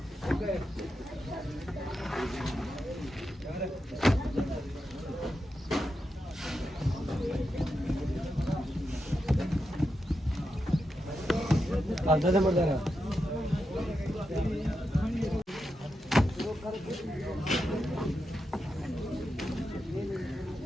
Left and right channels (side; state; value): both; normal; correlation 0.87